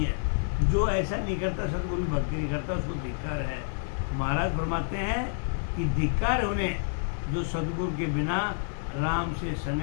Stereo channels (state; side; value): silent; right; digital silence